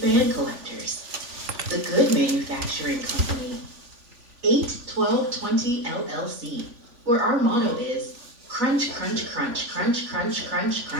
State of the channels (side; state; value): left; late; 3.5 ms